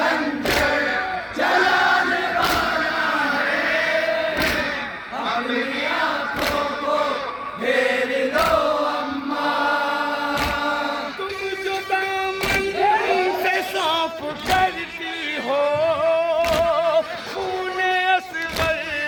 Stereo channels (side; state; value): both; identical; correlation 1.00